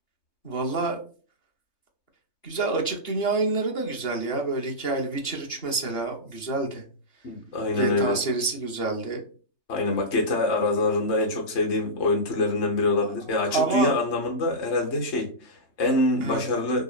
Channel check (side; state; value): right; late; 2.9 ms